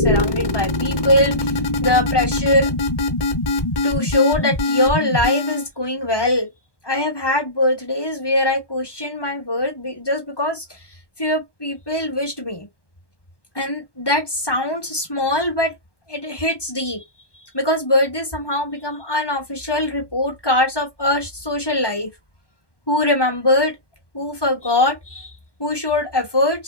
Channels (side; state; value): right; late; 1.2 ms